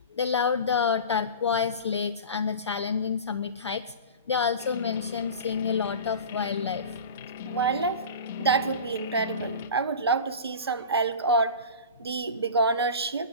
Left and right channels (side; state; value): both; inverted; correlation -0.34